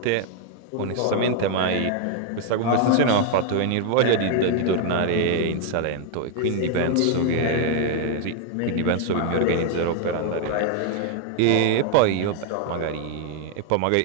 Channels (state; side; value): different; both; correlation 0.00